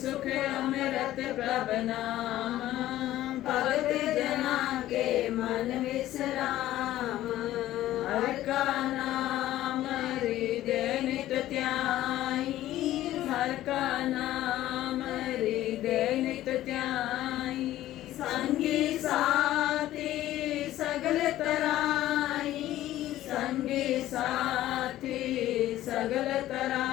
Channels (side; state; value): right; quieter; 14.3 dB